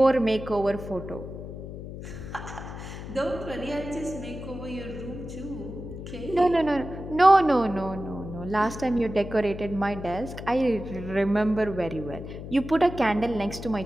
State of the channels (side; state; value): left; noise; hum, 10 dB below the sound